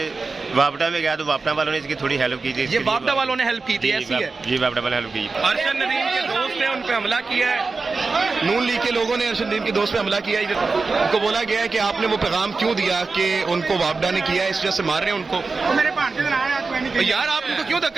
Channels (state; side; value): quieter; left; 4.1 dB